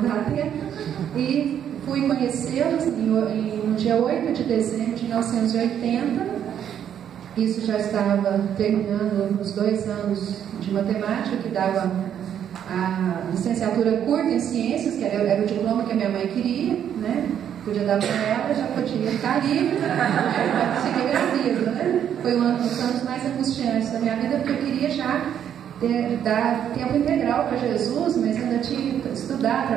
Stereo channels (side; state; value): left; quieter; 9.4 dB